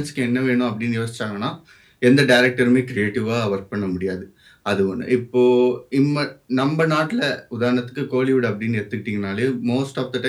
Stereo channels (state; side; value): identical; both; correlation 1.00